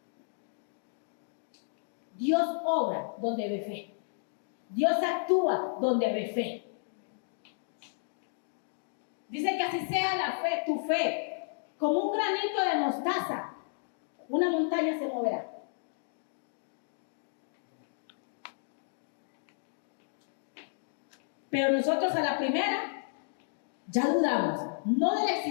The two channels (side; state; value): right; silent; digital silence